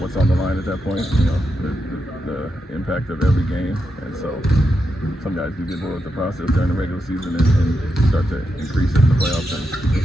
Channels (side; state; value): both; normal; correlation 0.86